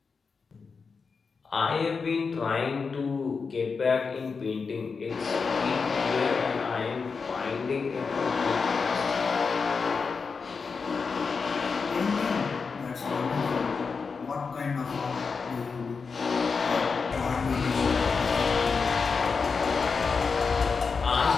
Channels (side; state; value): right; quieter; 5.1 dB